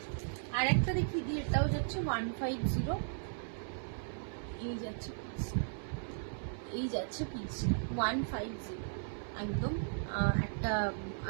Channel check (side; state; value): left; silent; 54 dB below the other